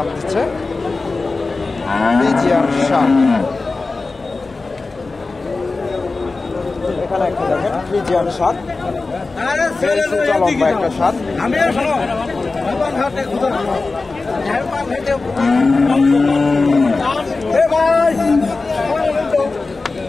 দিচ্ছে ফ্রিজিয়ান সার। এখানে একটা দেখেন ফ্রিজিয়ান সার, লম্বা একটা সার।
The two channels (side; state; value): right; quieter; 3.7 dB